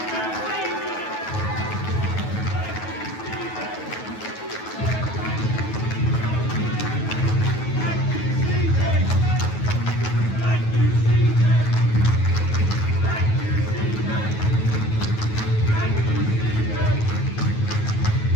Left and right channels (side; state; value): right; late; 9.3 ms